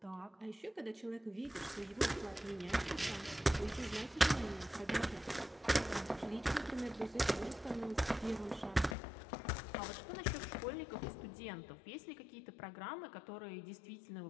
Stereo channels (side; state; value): right; drops out; at 9.0 s